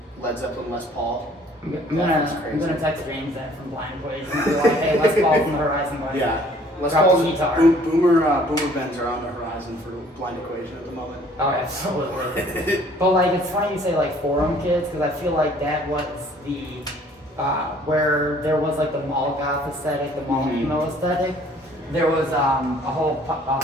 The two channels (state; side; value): normal; both; correlation 0.57